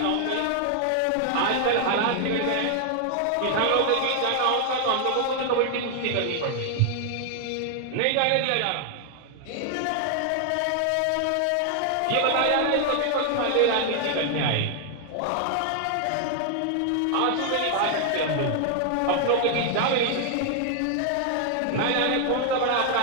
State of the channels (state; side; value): different; both; correlation 0.00